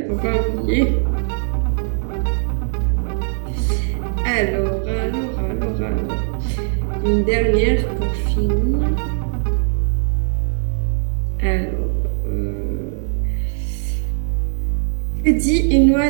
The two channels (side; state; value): left; silent; digital silence